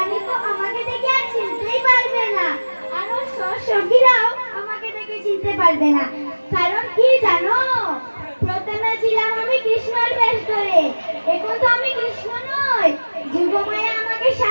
তো আমাকে দেখে আর চিনতেই পারবে না, আর ওর সঙ্গীরাও আমাকে দেখে চিনতে পারবে না। কারণ কি জানো, প্রথমে ছিলাম আমি কৃষ্ণর বেশ ধরে, এখন তো আমি কৃষ্ণ নই, যুগমায়া আমাকে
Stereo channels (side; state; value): both; inverted; correlation -1.00